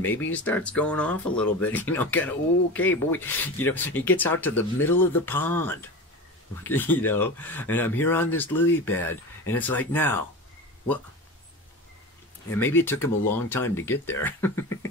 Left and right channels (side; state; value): both; normal; correlation 0.29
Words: Maybe he starts going off a little bit, kind of, okay, boy, he gets out to the middle of the pond, and I'm here on this lily pad, and it's like, now, what? And maybe it took him a long time to get there,